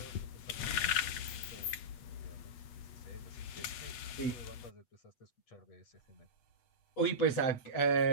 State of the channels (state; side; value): late; right; 8.2 ms